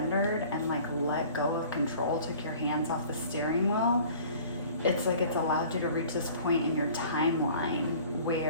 and like let go of control, took your hands off the steering wheel. It's like it's allowed you to reach this point in your timeline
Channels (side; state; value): both; inverted; correlation -0.48